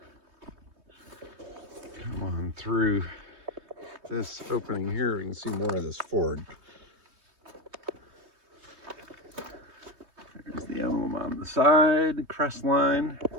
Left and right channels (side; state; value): left; late; 3.2 ms